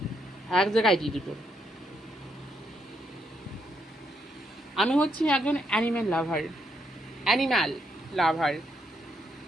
এক জায়গায় দিয়ে দুটো। আমি হচ্ছি একজন অ্যানিম্যাল লাভার।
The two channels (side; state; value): both; normal; correlation 0.77